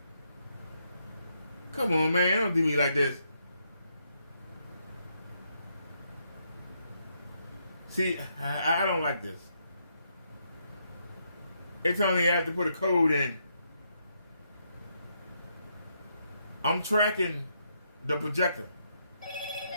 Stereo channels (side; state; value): both; inverted; correlation -0.77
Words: Come on, man. Don't do me like this. See, I don't like this. They tell me I have to put a code in. I'm tracking the projector.